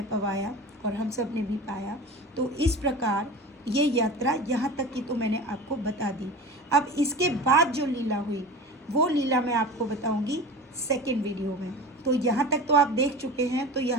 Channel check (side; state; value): both; normal; correlation 0.33